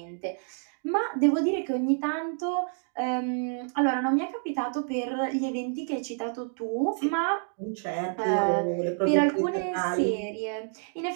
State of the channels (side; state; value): left; silent; 59 dB below the other